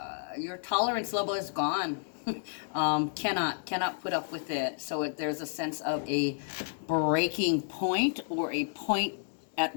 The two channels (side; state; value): right; silent; digital silence